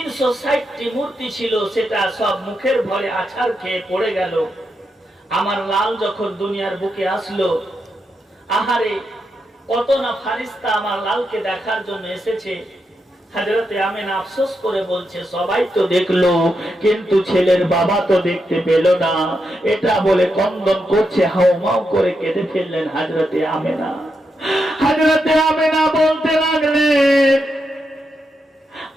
মূর্তি ছিল, সেটা সব মুখের ভরে আছাড় খেয়ে পড়ে গেল। আমার লাল যখন দুনিয়ার বুকে আসলো, আহারে কত না ফারিস্তা আমার লালকে দেখার জন্য এসেছে। হযরতে আমেনা আফসোস করে বলছে, সবাই তো দেখলো কিন্তু ছেলের বাবা তো দেখতে পেল না। এটা বলে কন্দন করছে, হাউমাউ করে কেঁদে ফেললেন হযরতে আমেনা। হযরতে আমেনা বলতে লাগলেন,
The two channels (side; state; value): both; normal; correlation 0.84